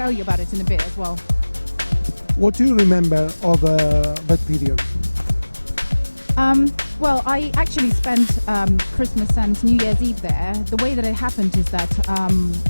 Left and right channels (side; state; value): both; inverted; correlation -1.00